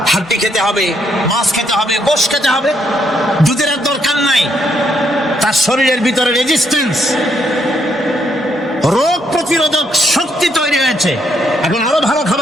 হাড্ডি খেতে হবে, মাছ খেতে হবে, গোশ খেতে হবে, দুধের আর দরকার নাই, তার শরীরের ভিতরে রেজিস্ট্যান্স, রোগ প্রতিরোধক শক্তি তৈরি হয়েছে, এখন আরো ভালো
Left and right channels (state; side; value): normal; both; correlation 0.75